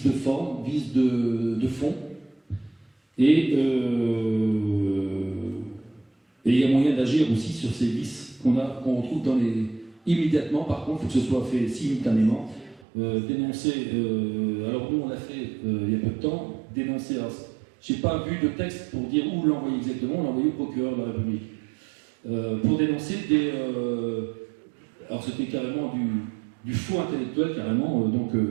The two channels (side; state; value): left; drops out; at 12.9 s